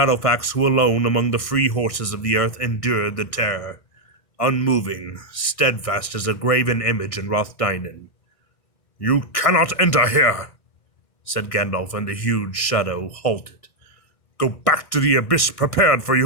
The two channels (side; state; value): right; late; 1.6 ms